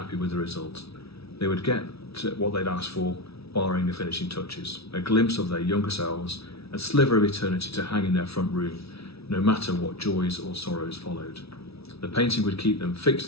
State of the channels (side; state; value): right; late; 0.77 ms